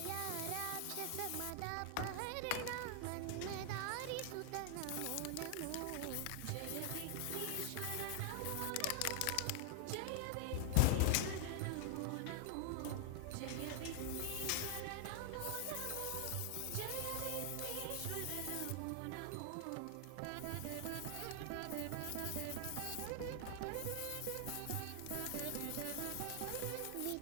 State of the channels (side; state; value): both; different; correlation 0.00